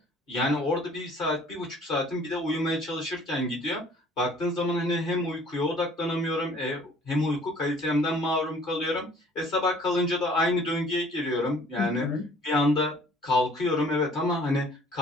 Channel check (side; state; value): both; normal; correlation 0.54